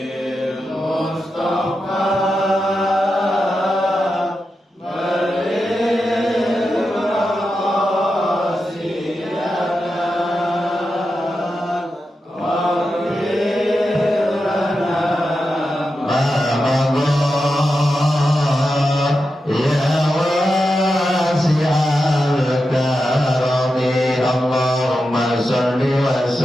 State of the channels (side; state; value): both; normal; correlation 0.89